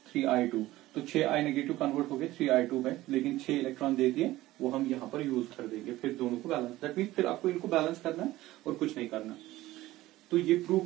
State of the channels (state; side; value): quieter; left; 16.7 dB